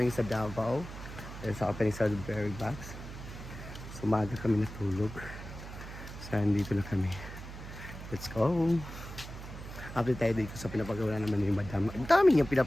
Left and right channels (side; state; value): right; noise; hum, 11 dB below the sound